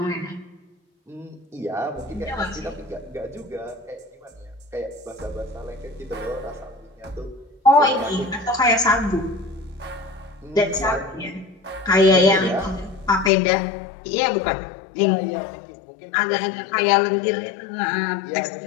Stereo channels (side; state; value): right; drops out; at 13.3 s